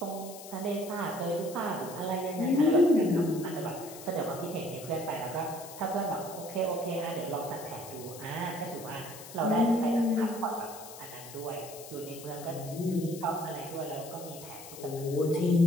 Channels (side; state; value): left; noise; hiss, 15 dB below the sound